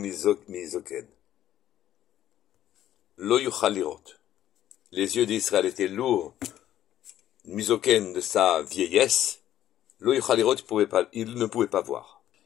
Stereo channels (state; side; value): quieter; right; 12.1 dB